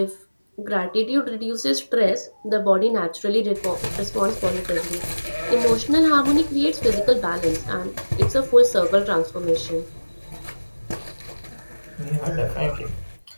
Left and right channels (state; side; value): inverted; both; correlation -1.00